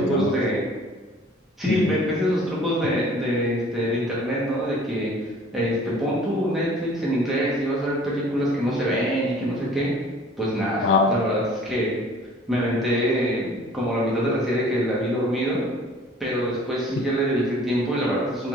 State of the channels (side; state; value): both; normal; correlation 0.51